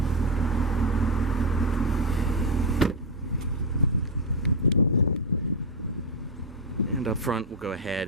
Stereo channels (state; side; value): normal; both; correlation 0.05